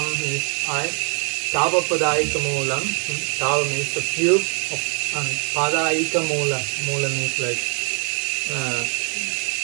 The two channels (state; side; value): quieter; left; 37.9 dB